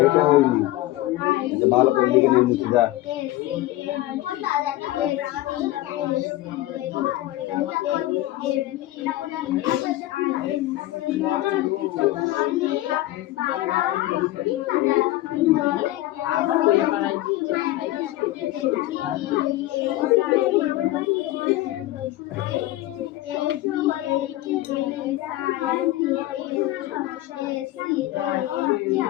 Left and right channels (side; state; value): right; quieter; 16.5 dB